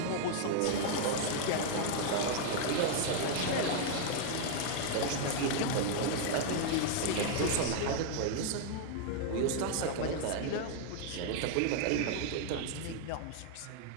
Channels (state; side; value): different; both; correlation 0.00